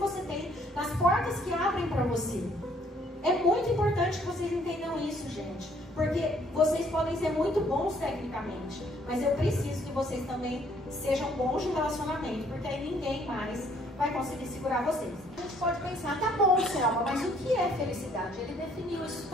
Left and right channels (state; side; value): normal; both; correlation 0.63